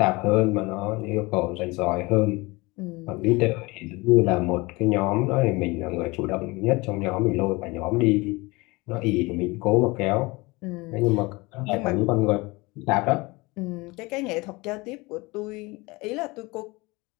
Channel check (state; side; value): quieter; right; 24.0 dB